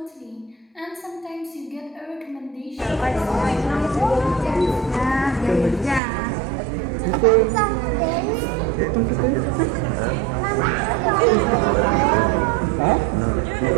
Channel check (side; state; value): left; drops out; at 6.0 s